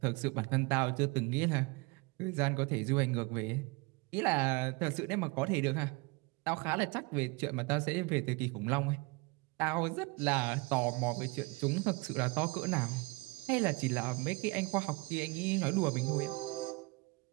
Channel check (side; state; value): left; quieter; 26.4 dB